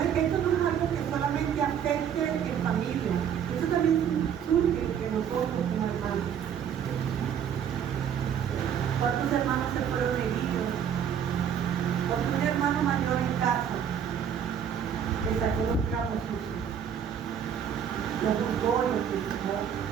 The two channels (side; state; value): left; quieter; 8.4 dB